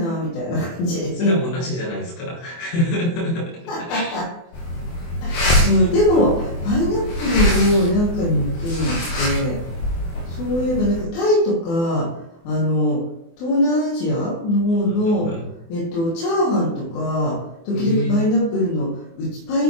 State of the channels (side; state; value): right; late; 24 ms